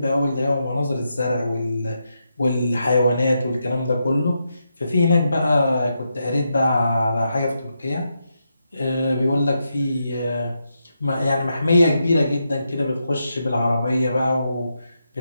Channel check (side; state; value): both; inverted; correlation -0.84